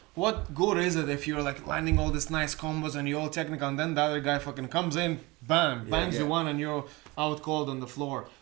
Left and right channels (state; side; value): quieter; left; 23.5 dB